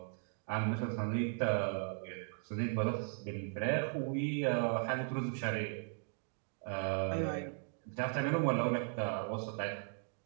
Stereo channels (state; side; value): silent; left; 53 dB below the other